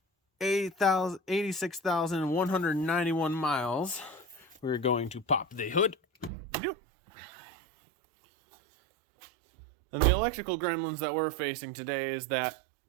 86,191 miles. We're going to pop the hood. And the electrical gremlins that we're facing today is that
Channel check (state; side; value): drops out; left; at 6.3 s